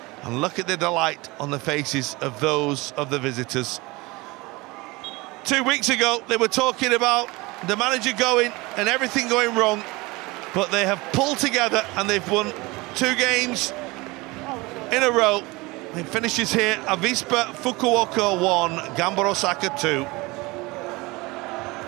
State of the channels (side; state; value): left; quieter; 23.2 dB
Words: And look at the delight on the faces of those of the visitors. 2 weeks ago, they were talking about the manager going and everything going wrong, but they have pulled together and they've won 2 games in a row. It finishes here, Avispa Fukuoka 1, Gamba Osaka 2.